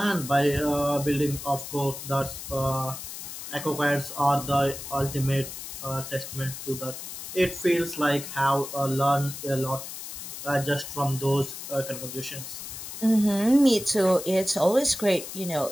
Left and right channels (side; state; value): left; noise; hiss, 9 dB below the sound